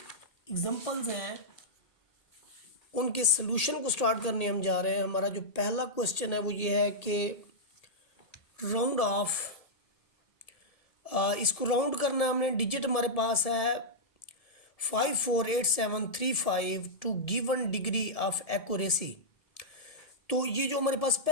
एग्जांपल्स हैं उनके सलूशन को स्टार्ट करने हम जा रहे हैं। हमारा जो पहला क्वेश्चन है वो ये है कि राउंड ऑफ, इसको राउंड करना है हमने। डिजिट हमारे पास है 548735 to given degree of accuracy. तो ये जो हमारे पास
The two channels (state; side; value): late; right; 1.7 ms